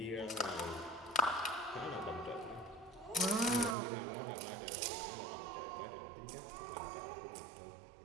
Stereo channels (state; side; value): drops out; left; at 3.8 s